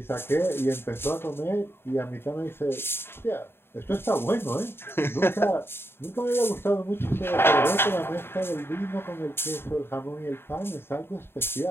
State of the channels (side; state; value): right; late; 0.11 ms